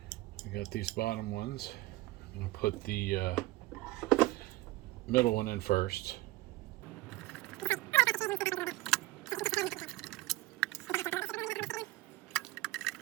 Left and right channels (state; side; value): quieter; left; 18.6 dB